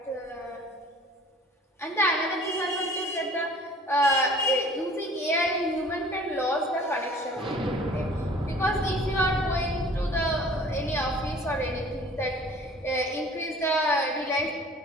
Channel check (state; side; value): normal; both; correlation 0.49